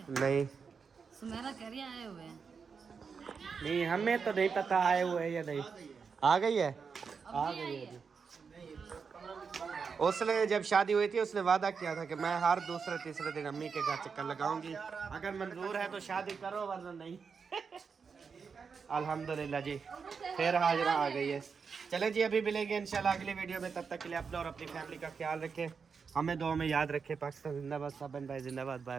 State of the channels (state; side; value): quieter; left; 5.7 dB